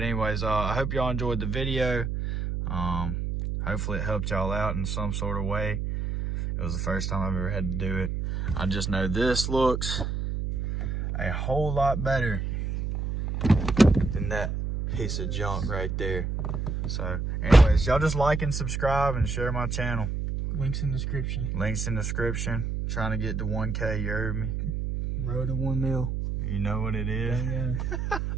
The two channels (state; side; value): noise; right; hum, 2 dB below the sound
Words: anyways, I hope y'all enjoyed the video. Hopefully it helped y'all out in some sort of way. It was the first time I've ever had to do it. I just know this looks a whole lot better than that piece of junk right there. So anyways, y'all just like and subscribe and share my channel. Links in description. Links in description. Trying to get to 1K, you heard me? Road to 1 mil. You know what it is. Yeah.